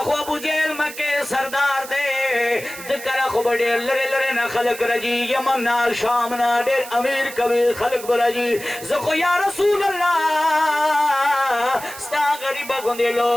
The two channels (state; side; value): noise; right; hiss, 14 dB below the sound